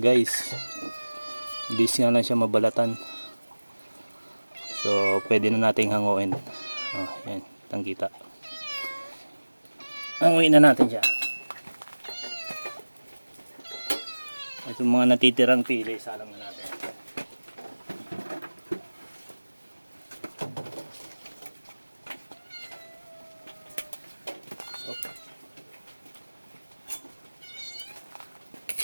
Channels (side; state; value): both; inverted; correlation -1.00